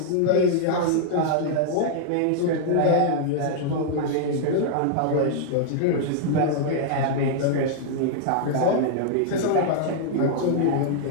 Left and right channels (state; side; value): different; both; correlation -0.01